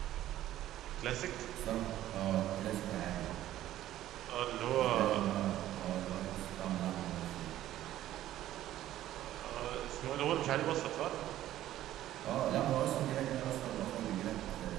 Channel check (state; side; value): quieter; left; 13.4 dB